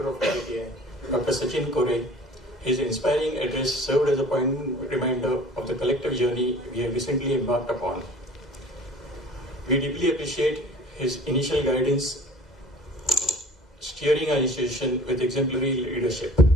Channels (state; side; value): normal; both; correlation 0.46